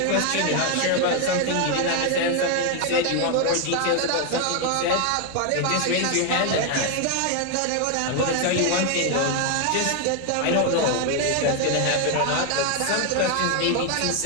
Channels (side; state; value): both; different; correlation 0.01